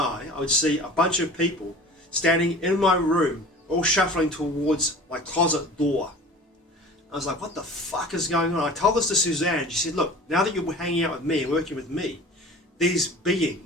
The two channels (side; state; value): both; normal; correlation 0.41